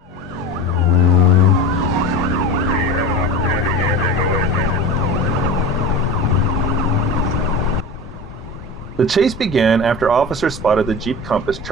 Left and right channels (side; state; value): both; normal; correlation 0.31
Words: The chase began after officers spotted the Jeep Compass